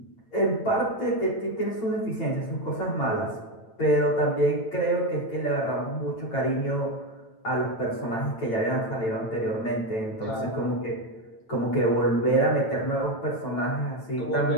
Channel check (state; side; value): late; right; 9.0 ms